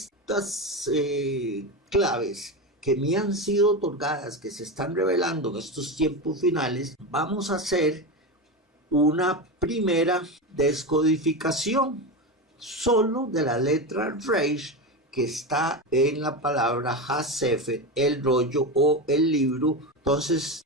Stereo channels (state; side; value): normal; both; correlation 0.18